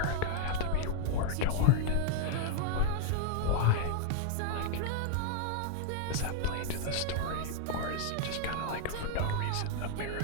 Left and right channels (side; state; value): both; different; correlation 0.00